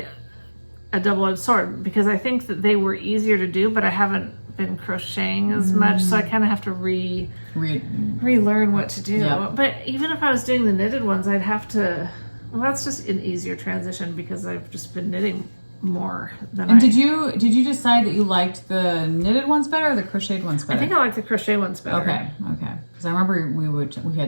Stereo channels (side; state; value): both; inverted; correlation -1.00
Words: a double-edged sword because I think that they were easier to do, but I haven't been crocheting as much, so I kind of have to relearn what to do. Yep. But even if I was doing the knitted ones, I'd have to. Well, that's just an easier transition because I've just been knitting more than And did you decide that you liked the knitted ones better or the crocheted ones better? I think I like the crochet ones better. Okay. Because I remember we